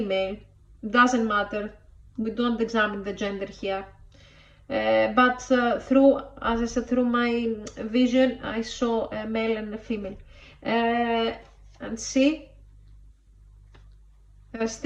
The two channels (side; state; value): both; identical; correlation 1.00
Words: Doesn't matter. We don't examine the gender here. But through, as I said, through my vision, I saw a male and a female. And see, they're